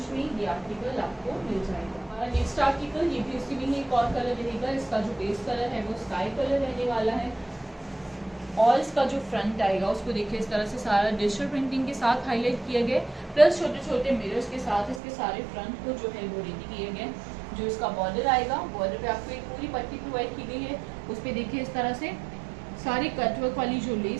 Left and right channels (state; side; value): drops out; left; at 15.0 s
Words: में ये आर्टिकल आपको मिल जाएगा। नेक्स्ट आर्टिकल ये भी उसी में एक और कलर रहेगा। इसका जो बेस कलर है वो स्काई कलर रहने वाला है और इसका जो फ्रंट आएगा उसको देखिए इस तरह से सारा डिजिटल प्रिंटिंग के साथ हाईलाइट किया गया, प्लस छोटे छोटे मिरर्स के साथ इसके सारे फ्रंट को जो है वो रेडी किए गए। जो इसका बॉर्डर आएगा, बॉर्डर पे आपको एक पूरी पट्टी प्रोवाइड की गई है, उस पर देखिए इस तरह से सारी कटवर्क वाली जो